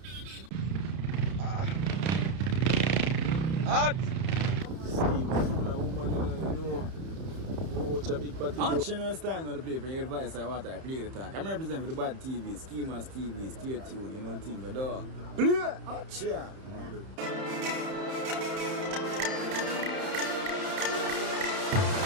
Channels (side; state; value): left; late; 31 ms